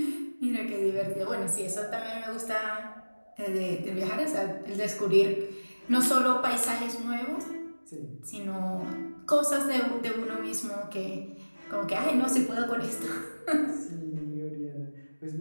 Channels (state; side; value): inverted; both; correlation -1.00